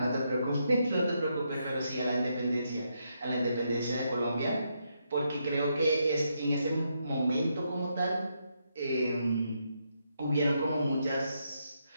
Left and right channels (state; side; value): inverted; both; correlation -0.79